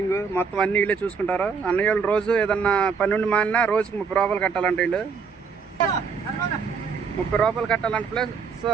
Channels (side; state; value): left; quieter; 5.6 dB